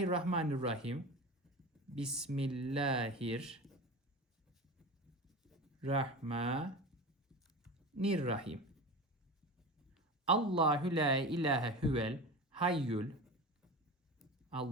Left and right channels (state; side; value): normal; both; correlation 0.29